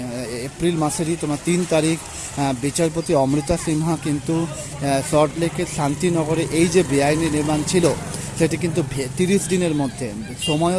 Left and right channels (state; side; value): identical; both; correlation 1.00